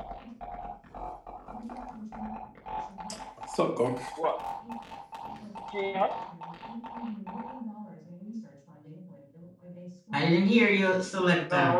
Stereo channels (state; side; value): identical; both; correlation 1.00